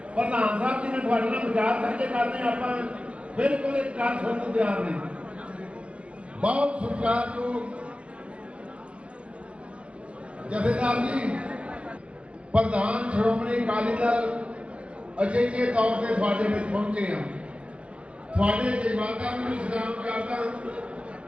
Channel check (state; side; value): late; left; 0.060 ms